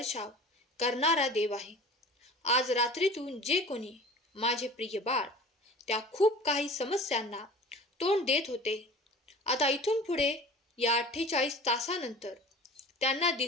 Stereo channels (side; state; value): both; normal; correlation 0.41